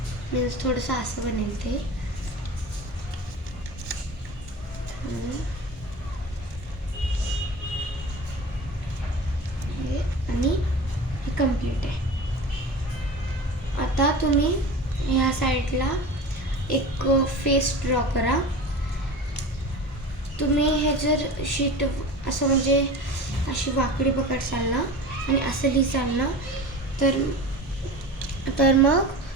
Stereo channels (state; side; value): normal; both; correlation 0.33